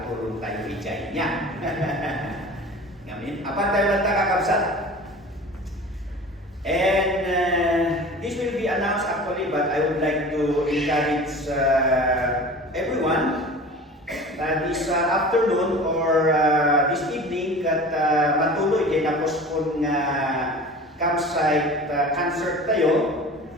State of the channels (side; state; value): both; normal; correlation 0.39